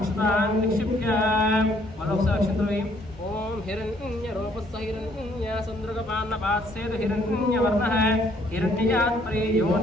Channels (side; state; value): both; normal; correlation 0.65